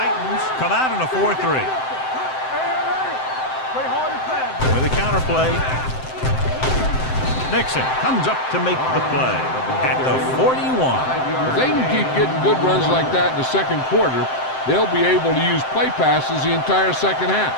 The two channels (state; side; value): late; right; 7.7 ms